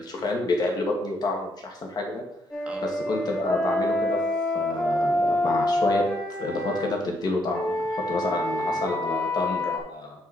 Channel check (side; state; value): both; normal; correlation 0.74